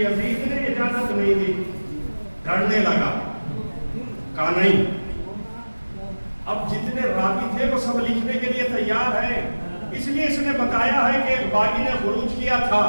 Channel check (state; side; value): inverted; both; correlation -1.00